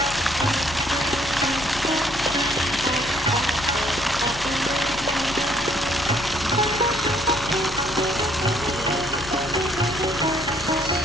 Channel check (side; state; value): left; noise; rumble, 20 dB below the sound